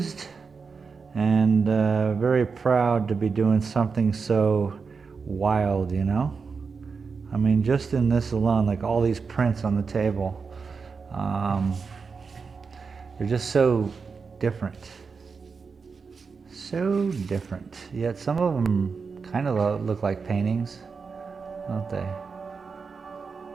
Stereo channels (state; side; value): quieter; left; 5.1 dB